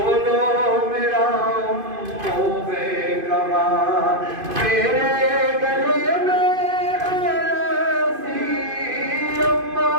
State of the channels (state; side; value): late; left; 2.5 ms